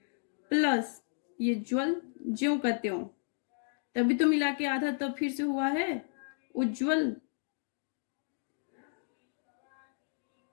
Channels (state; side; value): silent; right; digital silence